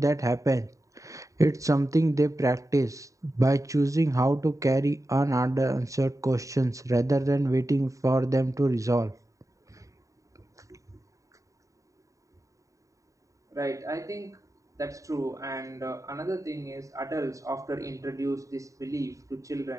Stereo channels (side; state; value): left; late; 0.16 ms